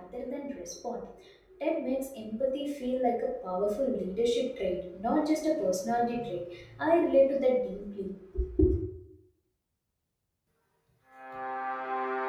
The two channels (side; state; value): both; identical; correlation 1.00